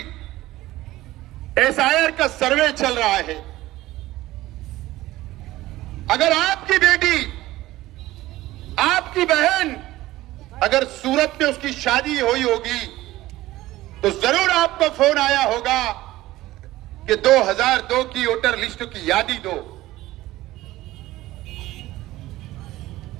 एसआईआर का सर्वे चल रहा है। अगर आपकी बेटी, आपकी बहन अगर सूरत में उसकी शादी हुई होगी तो जरूर आपको फोन आया होगा कि 2002 की वोटर लिस्ट की यादी दो।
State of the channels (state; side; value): quieter; left; 16.7 dB